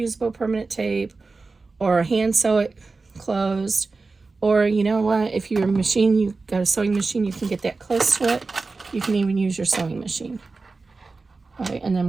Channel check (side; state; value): left; quieter; 3.9 dB